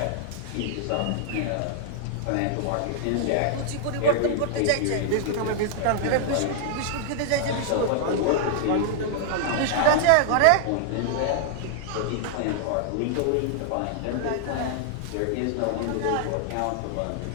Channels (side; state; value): both; different; correlation -0.01